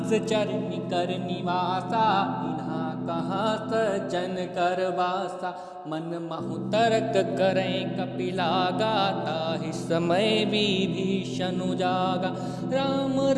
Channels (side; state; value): both; identical; correlation 1.00